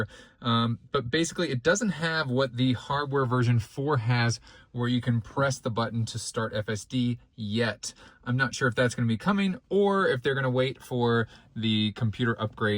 But basically, it doesn't have what the hardware version 4 has, where you can press the button to start FSD yet. I'm not sure if that's going to be coming or if they're going to wait for the computer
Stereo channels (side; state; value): both; identical; correlation 1.00